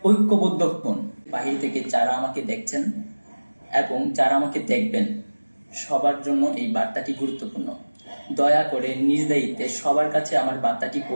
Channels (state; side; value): inverted; both; correlation -1.00